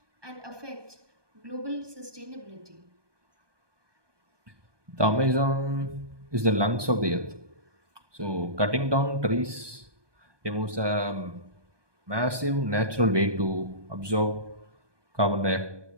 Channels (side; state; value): left; late; 1.2 ms